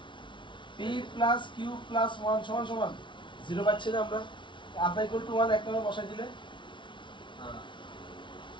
p প্লাস q প্লাস 1 সমান সমান 0 পাচ্ছি না আমরা আলফা ইকুয়াল টু 1 এক নম্বর বসাই দিলে হ্যাঁ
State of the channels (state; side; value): late; right; 0.24 ms